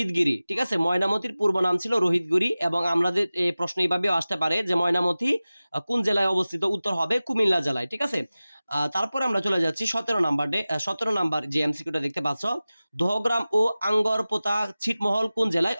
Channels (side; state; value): both; inverted; correlation -0.97